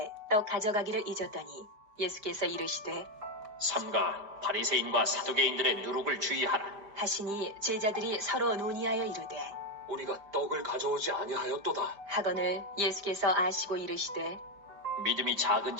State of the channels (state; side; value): late; left; 5.0 ms